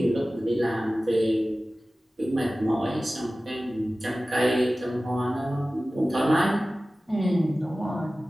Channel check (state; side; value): normal; both; correlation 0.96